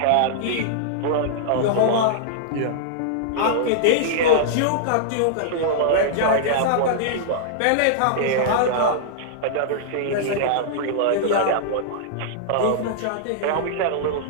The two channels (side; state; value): both; different; correlation -0.02